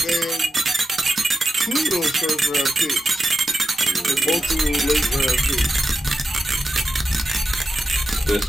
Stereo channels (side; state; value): both; normal; correlation 0.89